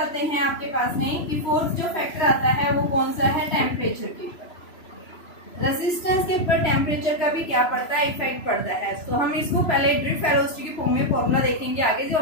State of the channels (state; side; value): late; right; 3.0 ms